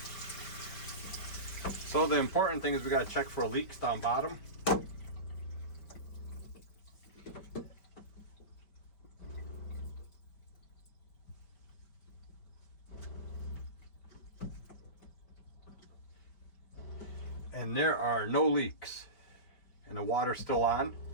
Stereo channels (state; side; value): late; right; 5.1 ms